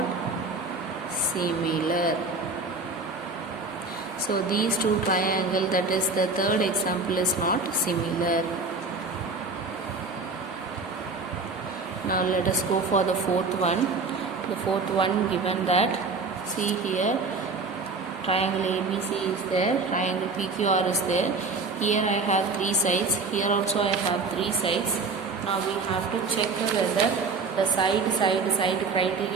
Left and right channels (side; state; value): left; quieter; 4.0 dB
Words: similar. So these two triangles, that is the third example, is not similar. Now let us go for the fourth one. The fourth one, given that, see here, triangle ABC is there, triangle PQR is there. Here I have three sides, here also I have three sides. Now we have to check whether the side